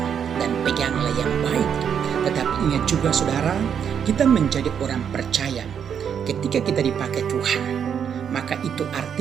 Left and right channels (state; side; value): quieter; left; 7.9 dB